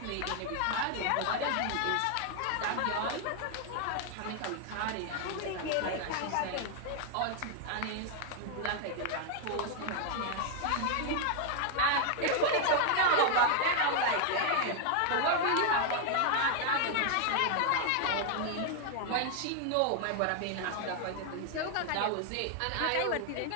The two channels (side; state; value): both; different; correlation 0.00